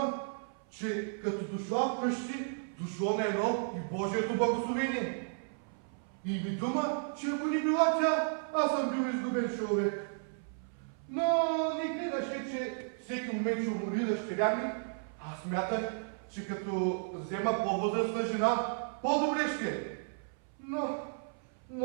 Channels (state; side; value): silent; left; 55 dB below the other